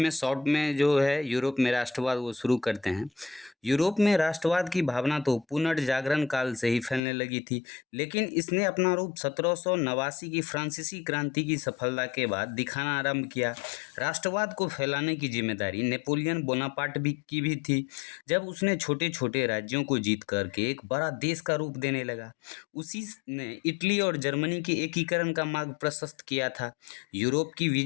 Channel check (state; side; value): drops out; right; at 7.0 s